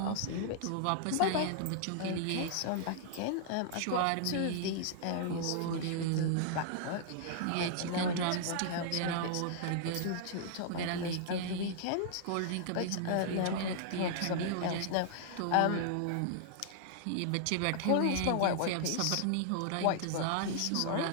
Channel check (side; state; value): both; different; correlation -0.01